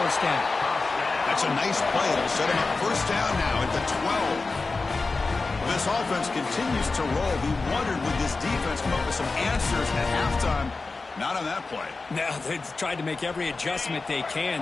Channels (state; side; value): quieter; right; 3.8 dB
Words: down. That's a nice play. It'll set him up first down now at the 12. This offense continues to roll. We wondered, would this defense come up with some answers at halftime? Not on that play. Now, they've tried to make every adjustment they can.